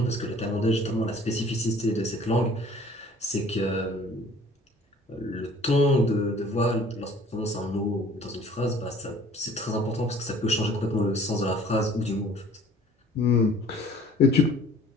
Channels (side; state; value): both; normal; correlation 0.52